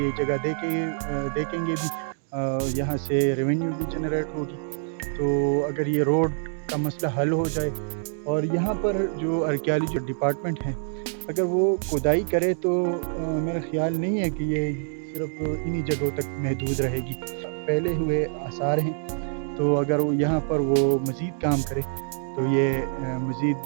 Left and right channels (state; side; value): silent; left; digital silence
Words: جگہ دیکھیں گے بھی، یہاں سے ریونیو بھی جنریٹ ہوگی۔ تو اگر یہ روڈ کا مسئلہ حل ہو جائے اور یہاں پر جو آرکیالوجی ڈپارٹمنٹ ہے اگر وہ کھدائی کرے تو میرا خیال نہیں ہے کہ یہ صرف انہی جگہوں تک محدود رہے گی، پہلے ہوئے آثار ہیں، تو اگر وہ یہاں پر وہ مزید کام کرے تو یہ مزید